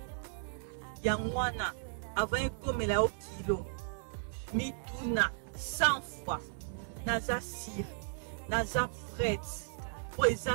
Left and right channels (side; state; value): left; silent; digital silence